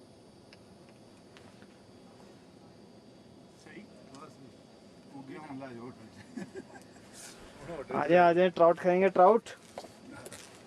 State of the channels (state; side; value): identical; both; correlation 1.00